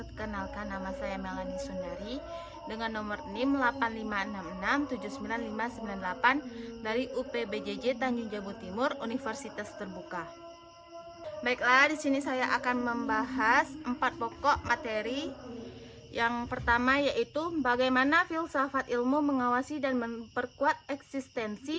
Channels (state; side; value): identical; both; correlation 1.00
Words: nama saya Melani Sundari dengan nomor NIM 8566799598 dari UPBJJ Tanjung Jabung Timur, Universitas Terbuka. Baiklah, di sini saya akan membahas 4 pokok materi. Yang pertama yaitu bagaimana filsafat ilmu mengawasi dan memperkuat